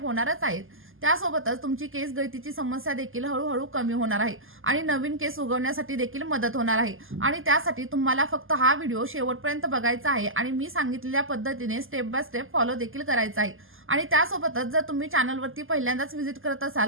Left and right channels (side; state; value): left; late; 0.59 ms